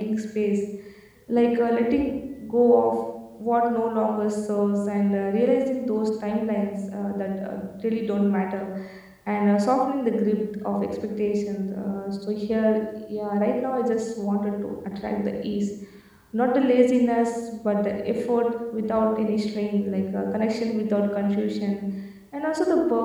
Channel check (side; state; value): both; identical; correlation 1.00